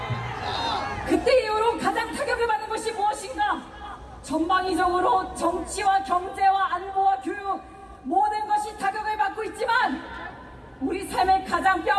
그때 이후로 가장 타격을 받는 것이 무엇인가? 전방위적으로 정치와 경제와 안보와 교육 모든 것이 타격을 받고 있지만 우리 삶에 가장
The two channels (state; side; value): identical; both; correlation 1.00